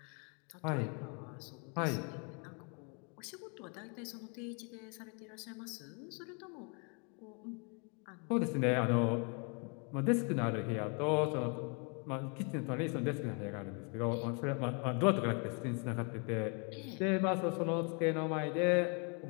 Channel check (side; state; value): right; quieter; 36.3 dB